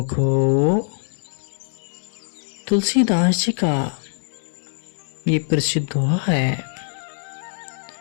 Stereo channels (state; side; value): silent; right; digital silence